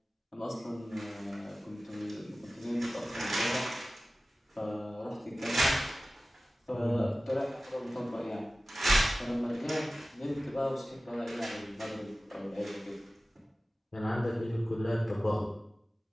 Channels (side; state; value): both; normal; correlation 0.96